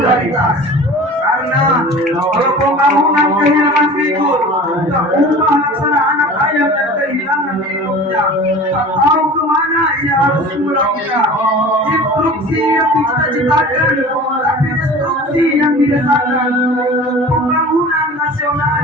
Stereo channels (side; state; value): both; normal; correlation 0.39